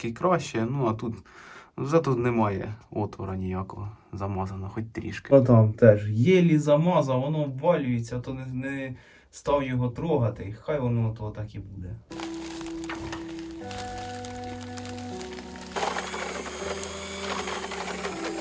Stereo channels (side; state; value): both; identical; correlation 1.00